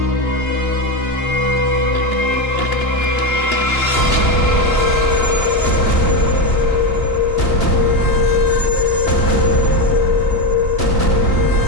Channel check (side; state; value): right; late; 2.9 ms